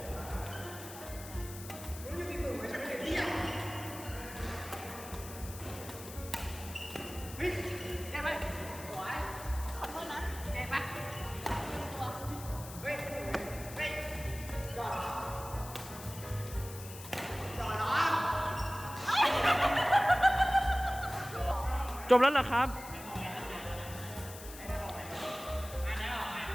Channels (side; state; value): left; noise; hiss, 13 dB below the sound